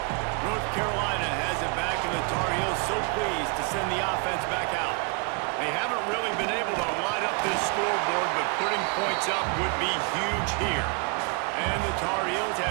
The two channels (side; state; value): left; quieter; 34.3 dB